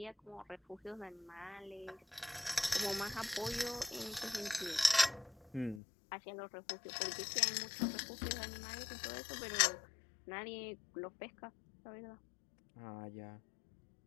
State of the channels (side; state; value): right; drops out; at 5.8 s